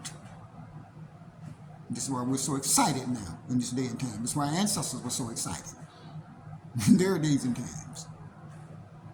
This is why we're so excited now in this day and time. This is why our ancestors were so excited in their days and times.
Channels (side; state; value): both; identical; correlation 1.00